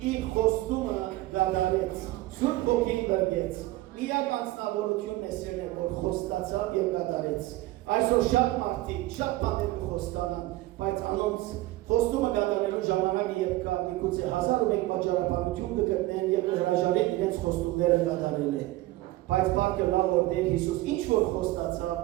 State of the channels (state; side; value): quieter; left; 18.0 dB